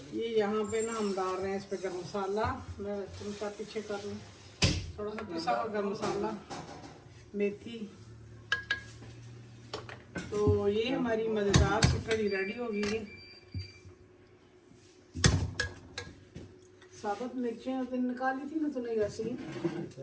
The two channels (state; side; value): identical; both; correlation 1.00